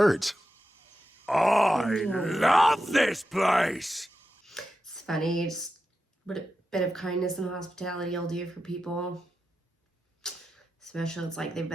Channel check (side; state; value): both; normal; correlation 0.90